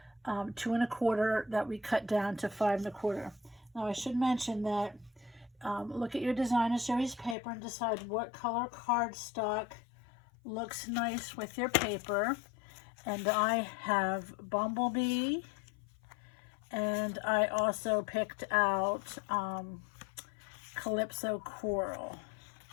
2 1/4 that we cut down to 5 1/4. Now I should mention that look at your designer series paper and decide what color cardstock looks nice with your paper. And I have Bumblebee, and I also picked out Calypso Coral.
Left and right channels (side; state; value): right; drops out; at 7.4 s